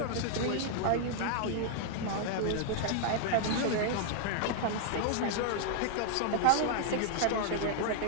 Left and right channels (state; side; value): different; both; correlation -0.01